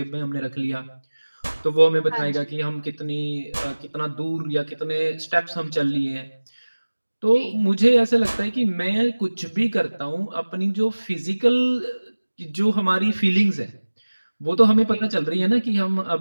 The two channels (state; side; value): inverted; both; correlation -1.00